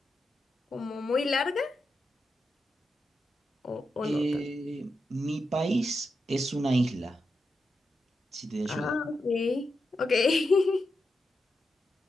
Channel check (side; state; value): both; normal; correlation 0.87